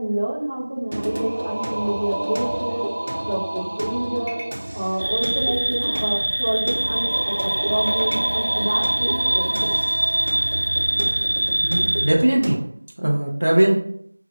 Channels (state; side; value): inverted; both; correlation -1.00